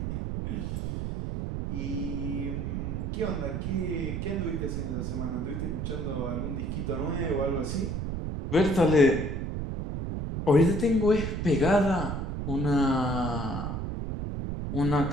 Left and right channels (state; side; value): noise; right; rumble, 3 dB below the sound